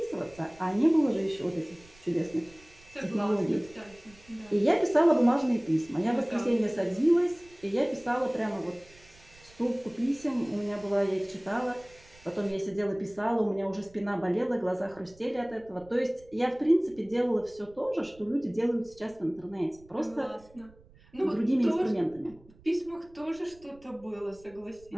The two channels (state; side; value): noise; right; rumble, 26 dB below the sound